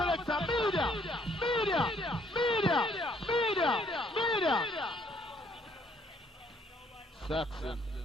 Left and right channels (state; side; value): normal; both; correlation 0.66